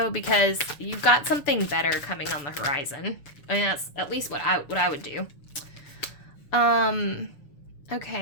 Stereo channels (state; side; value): late; right; 6.9 ms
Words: because you've got something better coming on the horizon. I mean, that's at least what I would do.